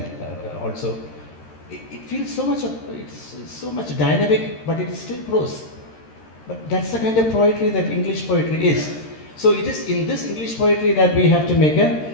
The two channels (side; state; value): right; late; 13 ms